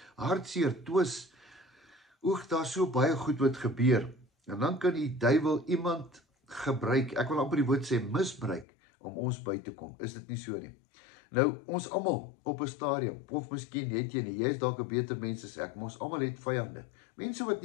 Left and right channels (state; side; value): drops out; right; at 8.7 s